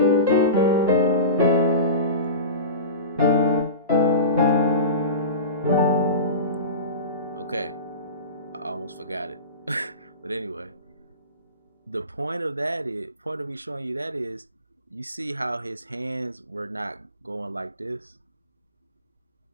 Okay, I almost forgot it. But anyway, the point of me showing you that is, you see how his hands were not going like this.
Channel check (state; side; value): inverted; both; correlation -0.31